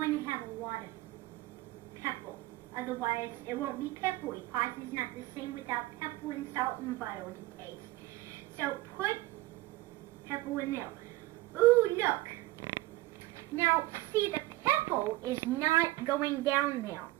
to have a lot of pepper. Otherwise, it won't be peppery. Pasta is not the same without pepper and salt and butter to taste. So put pepper in there. Ooh, look. Now, see, the pepper is not going down there.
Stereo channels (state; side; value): quieter; left; 18.2 dB